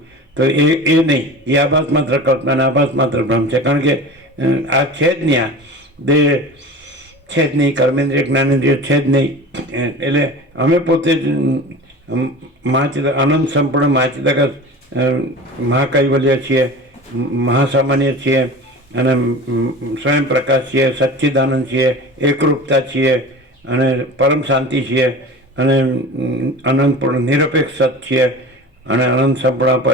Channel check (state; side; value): normal; both; correlation 0.35